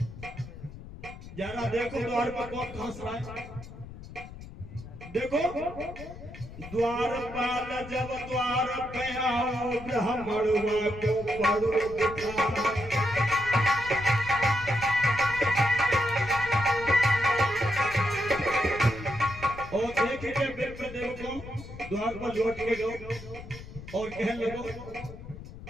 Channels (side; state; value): left; noise; rumble, 14 dB below the sound